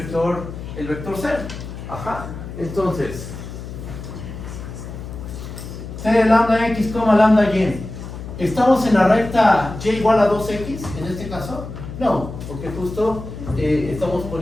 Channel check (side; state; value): left; noise; hum, 10 dB below the sound